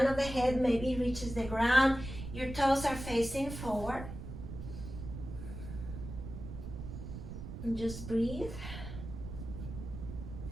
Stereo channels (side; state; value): right; noise; rumble, 9 dB below the sound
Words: of the head maybe reaches the ground. Your toes are facing forward. And just breathe.